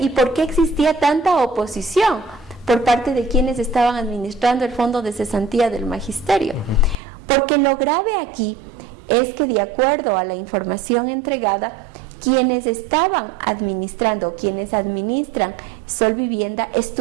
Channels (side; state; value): left; drops out; at 7.0 s